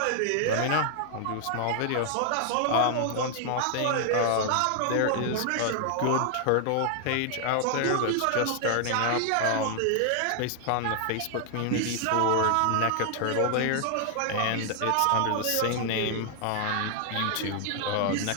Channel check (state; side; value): different; both; correlation 0.00